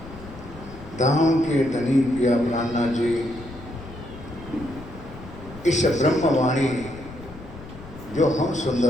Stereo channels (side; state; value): left; noise; rumble, 16 dB below the sound